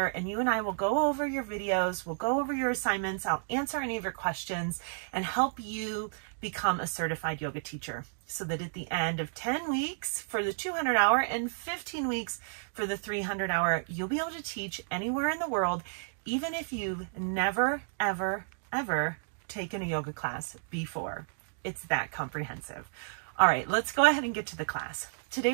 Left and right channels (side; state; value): left; silent; digital silence